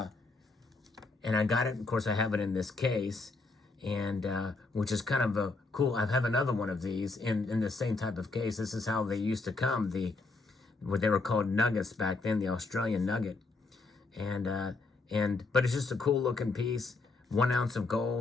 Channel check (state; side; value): quieter; right; 3.6 dB